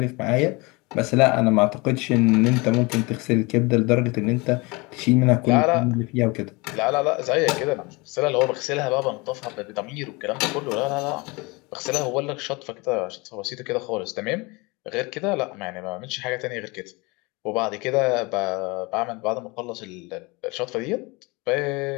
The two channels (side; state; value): right; quieter; 26.0 dB